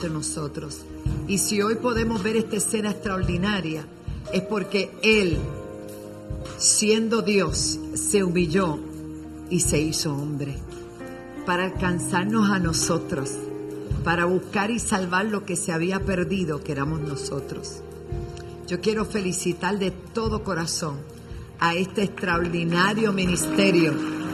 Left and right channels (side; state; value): both; identical; correlation 1.00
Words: nosotros. Y si hoy podemos ver esta escena extraordinaria, es porque Él, siendo Dios, se humilló y se hizo hombre para alcanzarnos a nosotros, para buscar y salvar lo que se había perdido, que éramos nosotros. Yo quiero felicitar de todo corazón a este extraordinario ministerio.